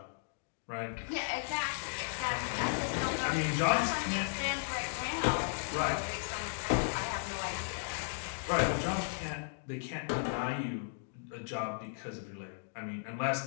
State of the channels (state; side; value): silent; right; digital silence